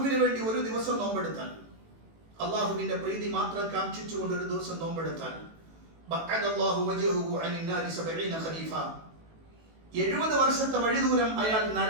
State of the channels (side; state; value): left; late; 18 ms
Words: വേണ്ടി ഒരു ദിവസം നോമ്പെടുത്താൽ, അല്ലാഹുവിന്റെ പ്രീതി മാത്രം കാംക്ഷിച്ചുകൊണ്ട് ഒരു ദിവസം നോമ്പെടുത്താൽ, ബഅദല്ലാഹു വജ്ഹഹു അനിൻ നാരി 70 ഖരീഫ, 70 വർഷത്തെ വഴിദൂരം അയാൾ